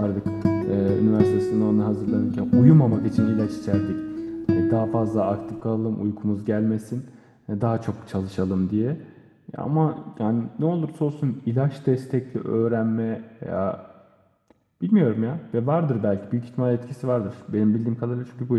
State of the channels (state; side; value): identical; both; correlation 1.00